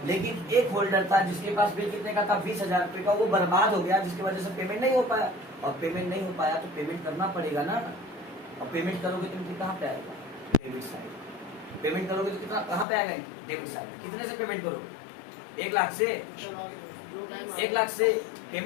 लेकिन एक होल्डर था जिसके पास बिल कितने का था? 20,000 रुपए का, वो बर्बाद हो गया, जिसकी वजह से पेमेंट नहीं हो पाया। और पेमेंट नहीं हो पाया तो पेमेंट करना पड़ेगा ना। और पेमेंट करोगे तो कहाँ पे आएगा? Debit side. पेमेंट करोगे तो कितना कहाँ पे आएगा? Debit side. कितने से पेमेंट करोगे? 1 लाख से। 1 लाख से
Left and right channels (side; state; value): right; drops out; at 12.9 s